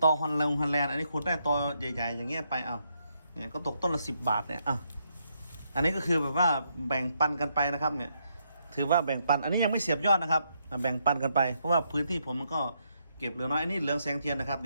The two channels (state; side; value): inverted; both; correlation -0.77